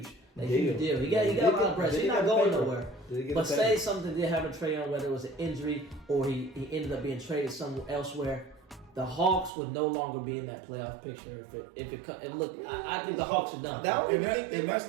deal. He got a lot of pressure. He's not going nowhere. But say something did happen to Trae Young, whether it was an injury or he ended up being traded somewhere elsewhere, the Hawks would no longer be in that playoff picture. I think the Hawks are done. And that's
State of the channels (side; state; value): left; drops out; at 9.5 s